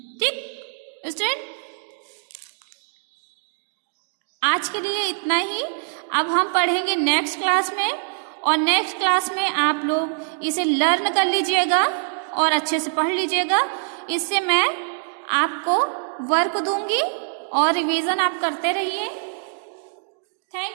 ठीक स्टूडेंट। आज के लिए इतना ही। अब हम पढ़ेंगे नेक्स्ट क्लास में, और नेक्स्ट क्लास में आप लोग इसे लर्न कर लीजिएगा और अच्छे से पढ़ लीजिएगा। इससे मैं आपको वर्क दूंगी और रिवीजन आप करते रहिए।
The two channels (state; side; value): silent; left; digital silence